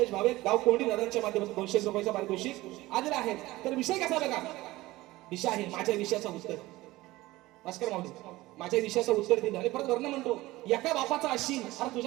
भावे गाव कोंडी दादांच्या माध्यमातून 200 रुपयाचा पारितोषिक आलेला आहे तर विषय कसा बघा विषय आहे माझ्या विषयाचं उत्तर भास्कर माऊली माझ्या विषयाचं उत्तर दिलं आणि परत वर्ण म्हणतो एका बापाचा अशील अरे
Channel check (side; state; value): left; quieter; 18.5 dB